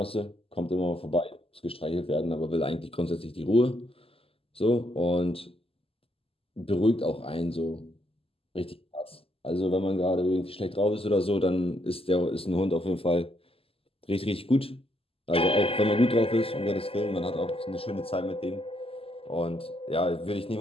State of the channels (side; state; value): right; late; 0.27 ms